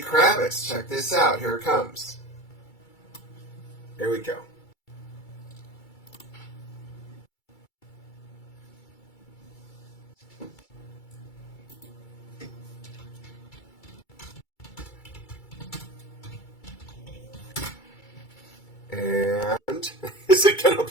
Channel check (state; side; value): late; right; 2.3 ms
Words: Kravitz. Check this out. Here it comes. Here we go. And is it going to